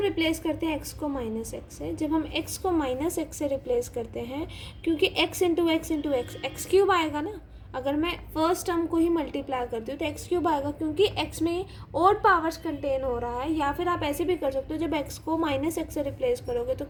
रिप्लेस करते हैं x को माइनस एक्स से। जब हम x को माइनस एक्स से रिप्लेस करते हैं क्योंकि x into x into x x cube आएगा ना। अगर मैं फर्स्ट टर्म को ही मल्टीप्लाई करती हूँ तो एक्स क्यूब आएगा क्योंकि x में और पावर्स कंटेन हो रहा है। या फिर आप ऐसे भी कर सकते हो, जब x को माइनस एक्स से रिप्लेस करोगे तो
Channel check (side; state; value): both; identical; correlation 1.00